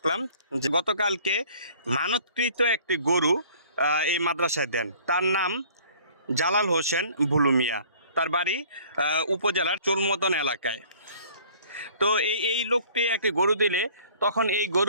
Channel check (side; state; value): both; inverted; correlation -0.53